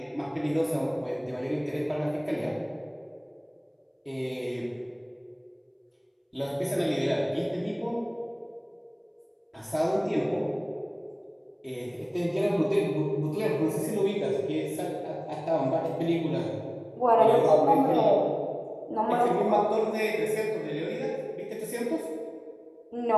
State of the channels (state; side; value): identical; both; correlation 1.00